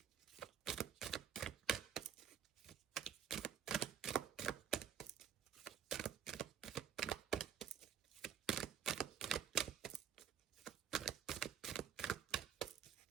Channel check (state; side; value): quieter; left; 8.7 dB